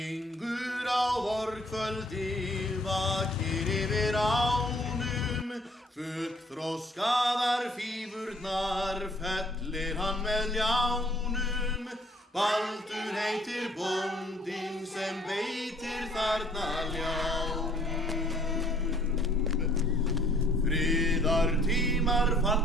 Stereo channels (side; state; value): both; normal; correlation 0.60